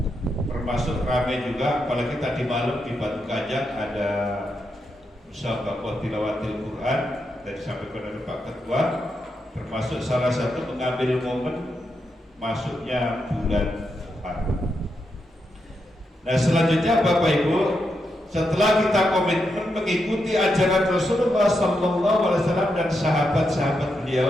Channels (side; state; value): both; normal; correlation 0.84